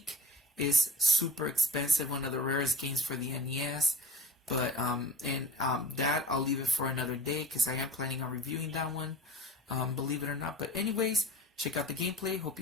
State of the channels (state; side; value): normal; both; correlation 0.40